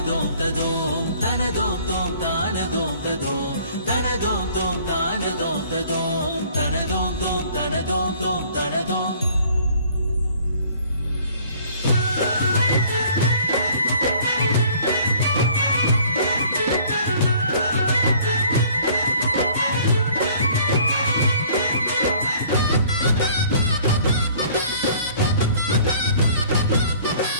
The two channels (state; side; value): inverted; both; correlation -0.55